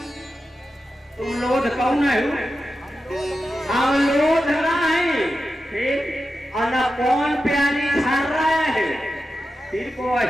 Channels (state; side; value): normal; both; correlation 0.91